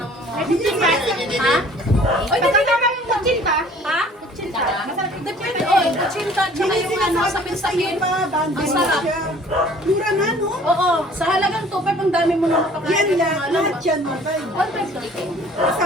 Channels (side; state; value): both; normal; correlation 0.52